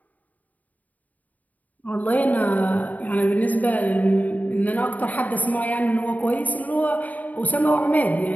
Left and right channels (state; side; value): late; right; 0.076 ms